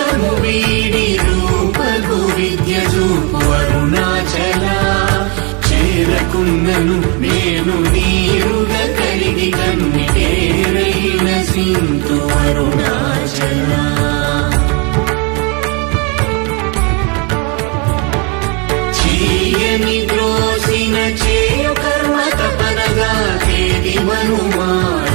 వీడి రూపగు విద్య చూపు అరుణాచల చేరకున్నను నేను నీరుగా కరిగి కన్నిటేరైన సింతు అరుణాచల చీయని ద్రోసిన చేయు కర్మ తపనగా తేది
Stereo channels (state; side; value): quieter; left; 32.5 dB